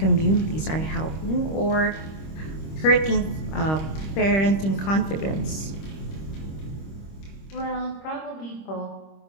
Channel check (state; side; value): late; right; 26 ms